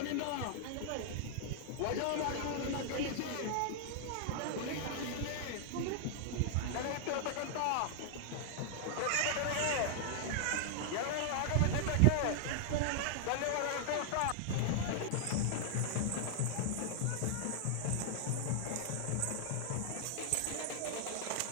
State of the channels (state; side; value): different; both; correlation -0.01